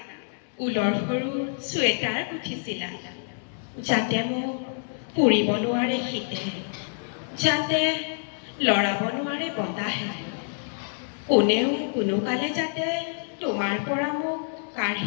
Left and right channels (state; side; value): silent; right; digital silence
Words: ঊলৰ সৰু চুৱেটাৰ গুঠিছিলা, যাতে মোক পুৰিব নোৱাৰে শীতে, যাতে লৰাব নোৱাৰে বতাহে, কোনেও কোনোকালে যাতে তোমাৰ পৰা মোক